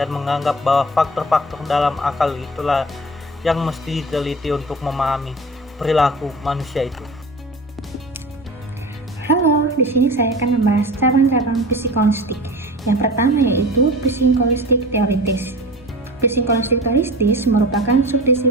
menganggap bahwa faktor-faktor dalam akal itulah yang mesti diteliti untuk memahami perilaku manusia itu. Halo, di sini saya akan membahas cabang-cabang psikolinguistik. Yang pertama yaitu psikolinguistik teoritis. Psikolinguistik teoritis merupakan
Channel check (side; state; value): both; normal; correlation 0.36